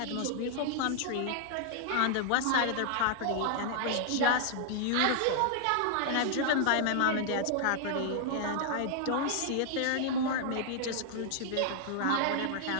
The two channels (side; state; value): both; different; correlation -0.01